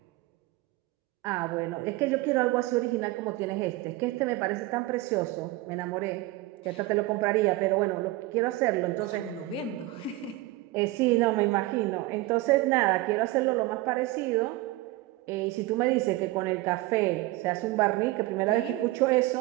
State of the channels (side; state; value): left; quieter; 18.3 dB